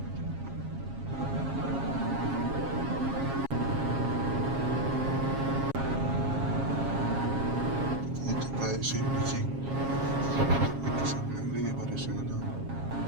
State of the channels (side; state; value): left; late; 7.4 ms